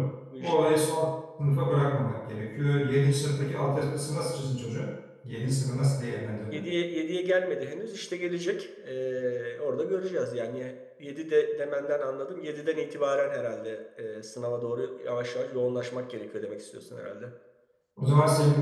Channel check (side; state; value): both; identical; correlation 1.00